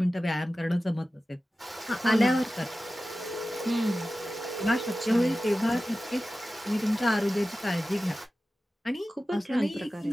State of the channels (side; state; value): both; normal; correlation 0.95